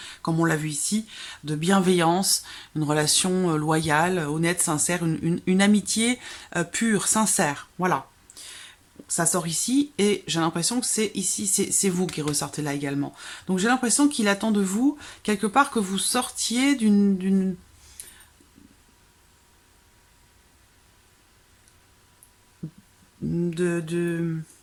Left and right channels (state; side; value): identical; both; correlation 1.00